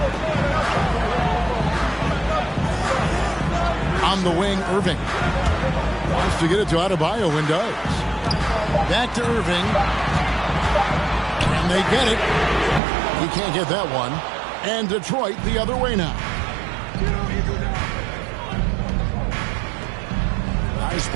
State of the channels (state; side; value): drops out; left; at 12.8 s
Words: On the wing, Irving. Wants to get it to Adebayo and does. Back to Irving. And they get it. He can't get that one. And Detroit the other way now. Nice